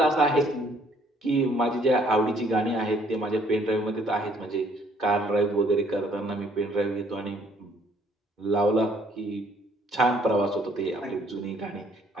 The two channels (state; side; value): normal; both; correlation 0.63